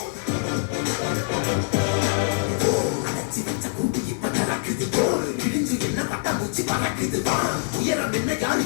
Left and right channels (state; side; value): silent; right; digital silence